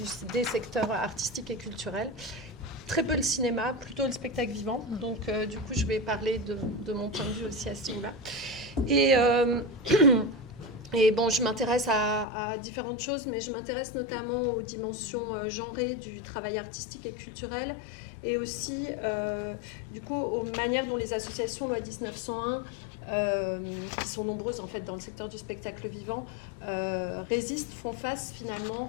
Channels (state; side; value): drops out; right; at 12.2 s